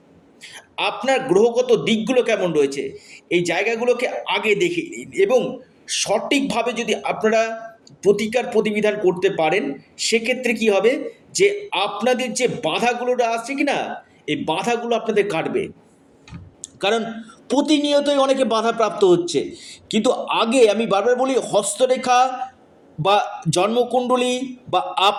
আপনার গ্রহগত দিকগুলো কেমন রয়েছে, এই জায়গাগুলোকে আগে দেখে নিন। এবং সঠিকভাবে যদি আপনারা প্রতিকার প্রতিবিধান করতে পারেন, সেক্ষেত্রে কি হবে যে আপনাদের যে বাধাগুলো আসছে কি না, এই বাধাগুলো আপনাদের কাটবে। কারণ প্রতিনিয়তই অনেকে বাধাপ্রাপ্ত হচ্ছে। কিন্তু আগে আমি বারবার বলি, হস্তরেখা বা জন্মকুণ্ডলী বা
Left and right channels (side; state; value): both; identical; correlation 1.00